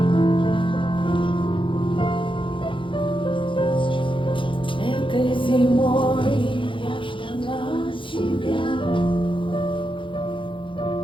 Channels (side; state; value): right; late; 0.25 ms